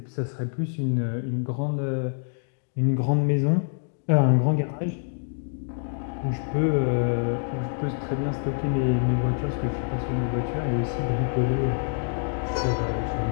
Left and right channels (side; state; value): right; silent; digital silence